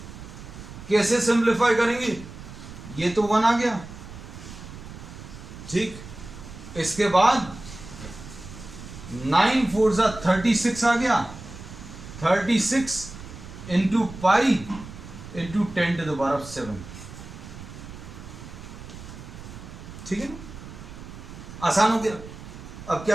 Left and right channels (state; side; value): noise; right; rumble, 14 dB below the sound